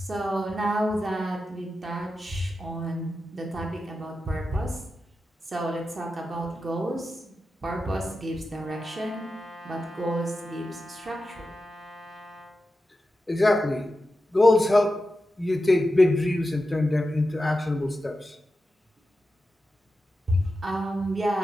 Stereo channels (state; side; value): normal; both; correlation 0.91